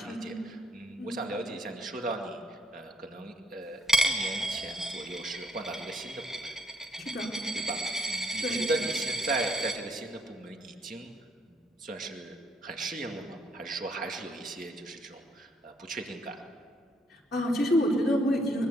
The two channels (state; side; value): normal; both; correlation 0.69